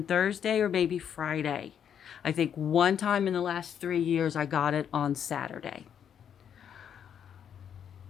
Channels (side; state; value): right; quieter; 8.6 dB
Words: Thursday or maybe Friday. I think one time in the last 3 years I got it on Saturday.